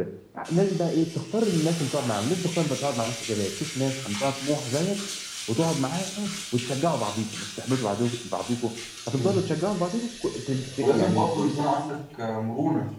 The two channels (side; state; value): both; identical; correlation 1.00